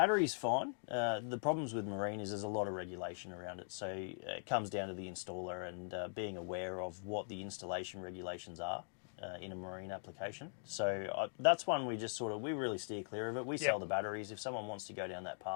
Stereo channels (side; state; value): right; silent; digital silence